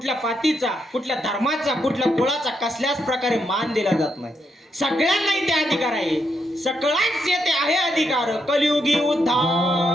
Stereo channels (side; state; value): both; normal; correlation 0.80